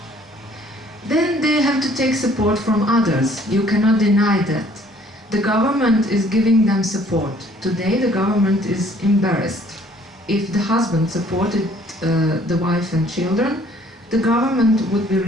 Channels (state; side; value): normal; both; correlation 0.59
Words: Then they have to take support from others. You cannot deny that. The government is giving them support. Today the government is embarrassed. If the husband supported the wife and children, the government would be